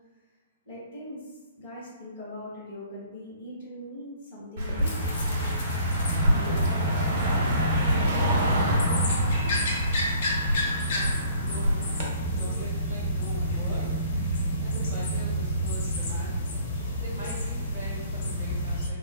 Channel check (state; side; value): inverted; both; correlation -0.56